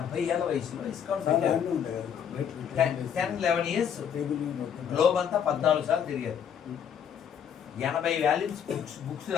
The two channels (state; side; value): quieter; right; 8.3 dB